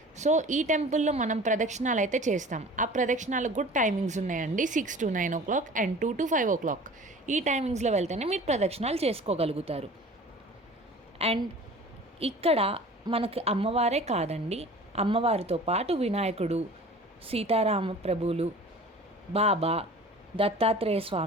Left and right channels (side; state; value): both; normal; correlation 0.43